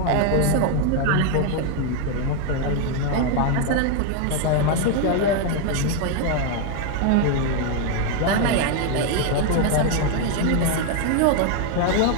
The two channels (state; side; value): different; both; correlation 0.00